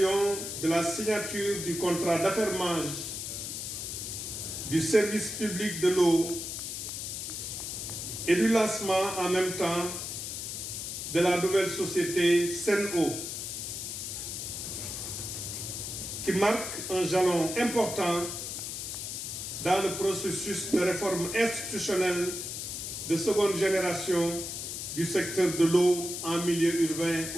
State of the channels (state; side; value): noise; left; hiss, 5 dB below the sound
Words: de la signature du contrat d'affermage du service public de l'eau et du lancement en même temps de la nouvelle société Sen'Eau, qui marque un jalon important dans le processus de réforme institutionnelle de seconde génération du secteur de l'eau en milieu urbain